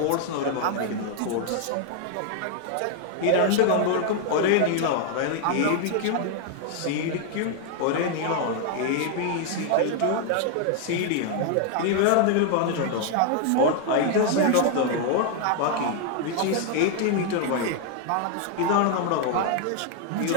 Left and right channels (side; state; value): both; different; correlation 0.00